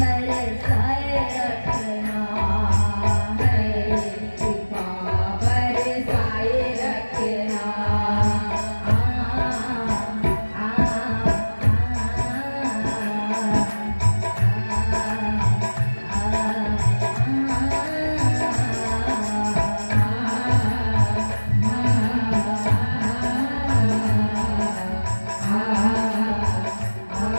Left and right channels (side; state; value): both; inverted; correlation -1.00